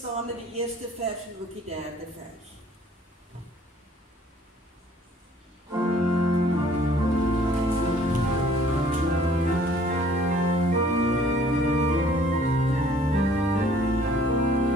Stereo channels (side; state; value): both; normal; correlation 0.57